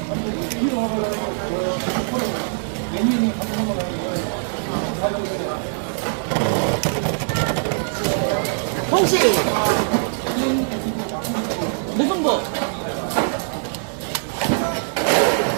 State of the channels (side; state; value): left; silent; 64 dB below the other